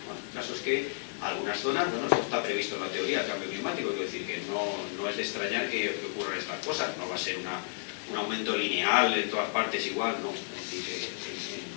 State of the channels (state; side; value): silent; right; digital silence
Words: el caso es que algunas zonas, bueno, esto está previsto en la teoría del cambio climático, quiero decir que no es de extrañar que ocurran estas cosas, no va a ser un aumento lineal en todas partes igual, no. Es decir,